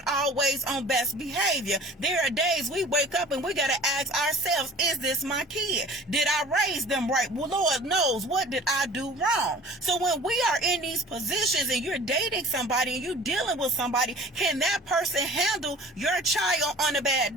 always on best behavior. There are days we wake up and we got to ask ourselves, is this my kid? Did I raise them right? Well, Lord knows, what did I do wrong? So when we are in these positions and you're dating somebody and you're dealing with somebody, can that person handle your child on a bad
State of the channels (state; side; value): normal; both; correlation 0.45